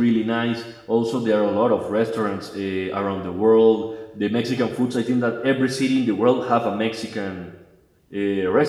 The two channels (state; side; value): identical; both; correlation 1.00